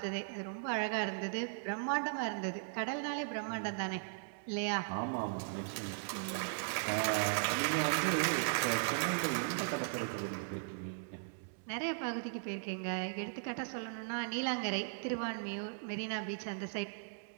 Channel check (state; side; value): silent; left; digital silence